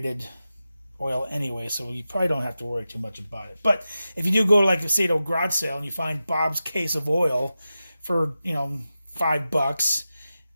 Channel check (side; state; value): both; inverted; correlation -0.92